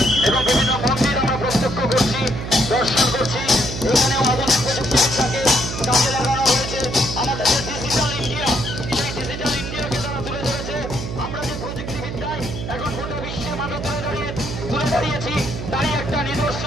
এবং বিভিন্ন মন্দির আমরা প্রত্যক্ষ করছি, দর্শন করছি। এখানেও আধুনিক প্রযুক্তিবিদ্যাকে কাজে লাগানো হয়েছে। আমাদের যে ডিজিটাল ইন্ডিয়া, সেই ডিজিটাল ইন্ডিয়াকে তারা তুলে ধরেছে। আমরা যে প্রযুক্তিবিদ্যায় এখন গোটা বিশ্বের মাঝে তুলে দাঁড়িয়েছি, তারই একটা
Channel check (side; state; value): right; noise; hum, 6 dB below the sound